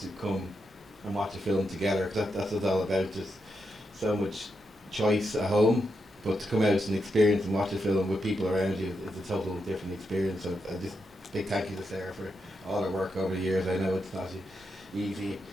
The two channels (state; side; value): normal; both; correlation 0.84